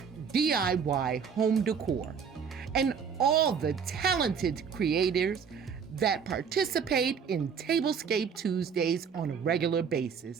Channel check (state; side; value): quieter; left; 6.6 dB